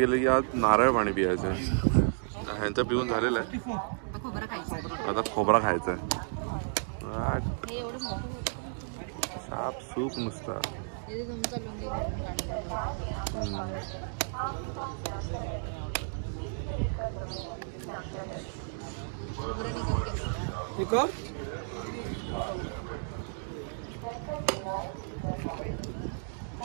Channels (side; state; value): left; silent; digital silence